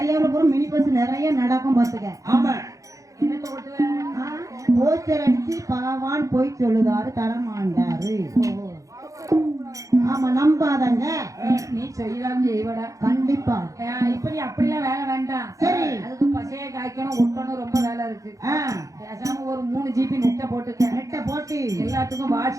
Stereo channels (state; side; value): late; left; 0.16 ms